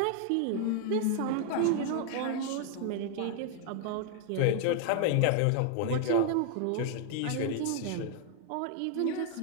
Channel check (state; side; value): different; both; correlation 0.00